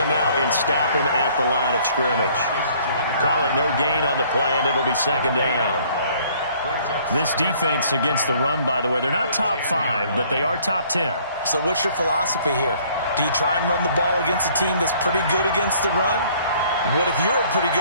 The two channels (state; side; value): inverted; both; correlation -0.59